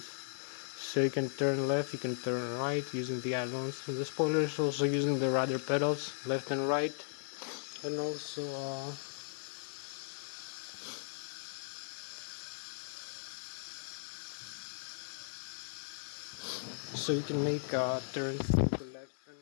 So you can turn left, you can turn right using the ailerons and the spoilers, also using the rudder pedals left and right, and also so you can make turns to the left and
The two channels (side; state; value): right; silent; digital silence